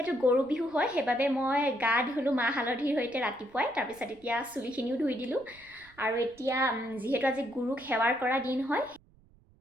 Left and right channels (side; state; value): right; noise; rumble, 28 dB below the sound